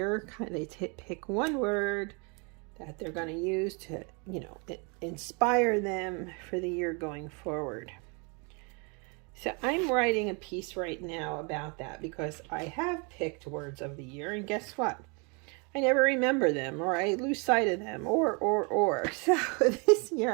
They pick one word that they're going to use to, you know, inspire them for the year going forward. So I'm writing a piece right now about that because I have picked words of the year, and guess what? I never remember them, or I lose sight of them, or. So this year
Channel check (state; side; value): quieter; left; 33.1 dB